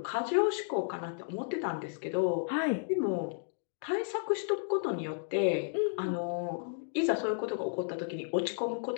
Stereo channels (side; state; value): right; silent; digital silence